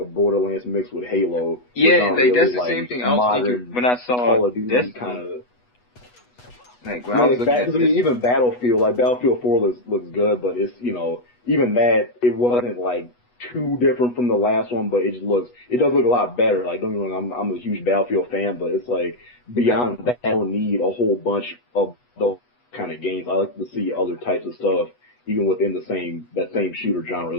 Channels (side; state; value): right; late; 8.2 ms